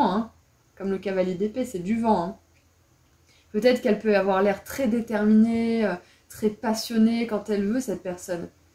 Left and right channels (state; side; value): identical; both; correlation 1.00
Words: hein. Comme le cavalier d'épée, c'est du vent, hein. Peut-être qu'elle peut avoir l'air très déterminée, très passionnée quand elle veut, cette personne.